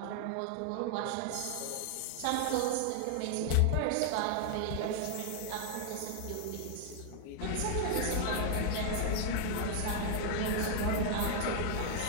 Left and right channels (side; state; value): both; different; correlation 0.00